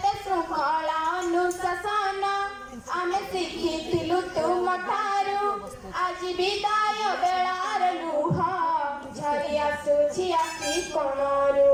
श्रृंखला अनुशासन आमे शिखिथिलु तुम ठारू आज विदाय बेलार लुह झरी आसुछि आखि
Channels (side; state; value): both; identical; correlation 1.00